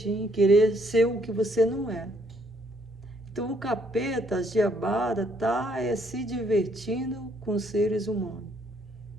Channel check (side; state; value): both; normal; correlation 0.68